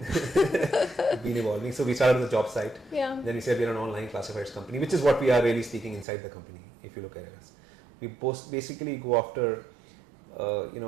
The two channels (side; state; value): left; drops out; at 6.1 s